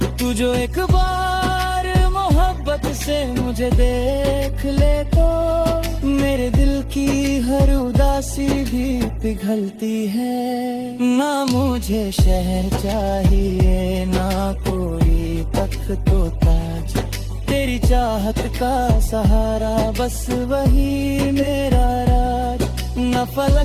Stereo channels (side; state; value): both; identical; correlation 1.00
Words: तू जो एक बार मोहब्बत से मुझे देख ले तो मेरे दिल की हर उदासी भी पिघलती है। ना मुझे शहर चाहिए ना कोई तख्त तो ताज, तेरी चाहत का सहारा बस वही मेरा राज। न